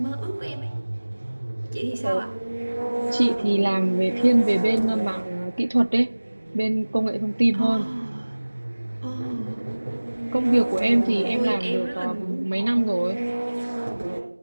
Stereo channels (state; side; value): inverted; both; correlation -1.00